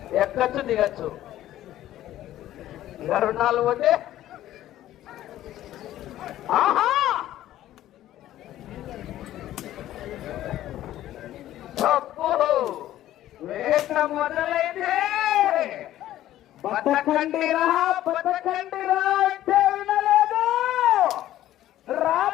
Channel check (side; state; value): right; quieter; 13.5 dB